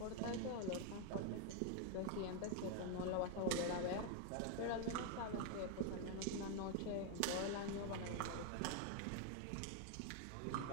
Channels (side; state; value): both; different; correlation 0.00